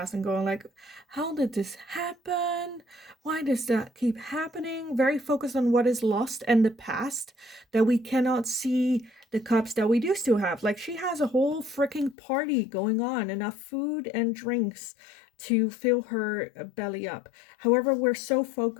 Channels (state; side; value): drops out; right; at 12.2 s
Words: and going like, how did this happen? Why does that keep happening? Very focused on what is lost and the past, that we cannot see the cups that we do still have. Like, she has a whole freaking party going on, enough food and drinks to fill her belly up. However, we're so